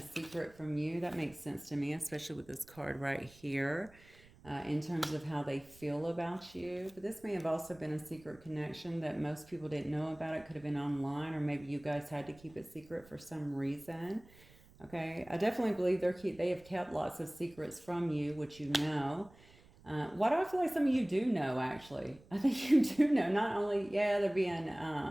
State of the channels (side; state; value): right; noise; rumble, 24 dB below the sound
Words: secret from you. That makes sense to me, especially with this card right here, in terms of how they feel about you. But this may have also been a secret connection that most people didn't know about. It could have been online, or maybe you guys had to keep it secret for some reason. Okay, I definitely believe they have kept lots of secrets from you, which you know. Why do I feel like some of you do know, actually? I think you do know. Not only, yeah, they're